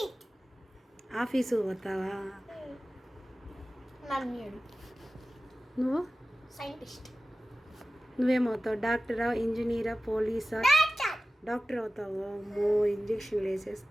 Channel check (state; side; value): normal; both; correlation 0.96